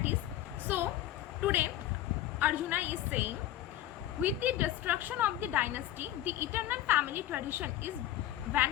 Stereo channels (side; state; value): right; quieter; 13.2 dB